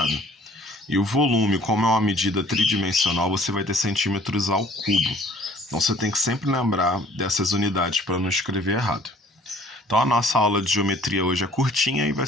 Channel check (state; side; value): normal; both; correlation 0.54